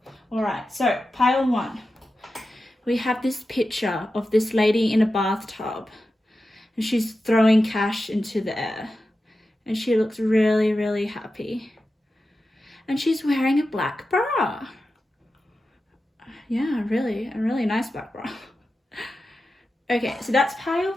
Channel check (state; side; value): normal; both; correlation 0.92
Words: All right, so pile 1. We have this picture of this lady in a bathtub and she's throwing cash into the air and she looks really happy. And she's wearing a black bra. Yeah, a really nice black bra. Okay, so that's pile